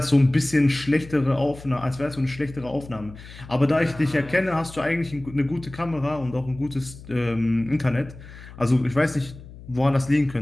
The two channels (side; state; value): left; noise; hum, 17 dB below the sound